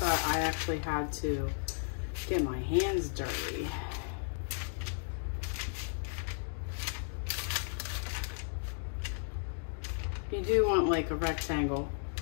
I actually had to get my hands dirty. You do want like a rectangle.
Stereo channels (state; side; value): silent; right; digital silence